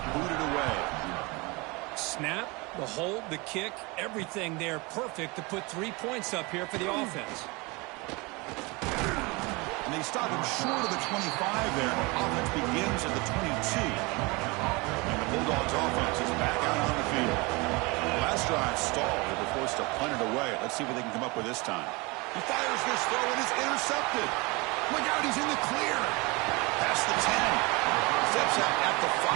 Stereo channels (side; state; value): left; quieter; 26.2 dB